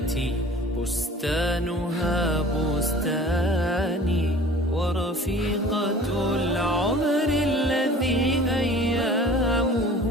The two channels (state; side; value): normal; both; correlation 0.45